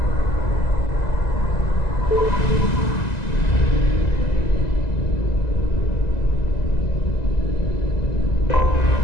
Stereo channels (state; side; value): late; right; 2.0 ms